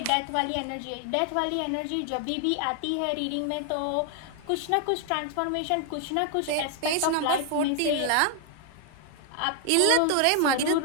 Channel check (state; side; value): different; both; correlation 0.00